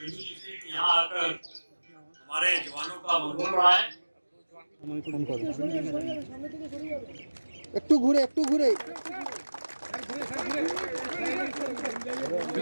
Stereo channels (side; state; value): both; inverted; correlation -1.00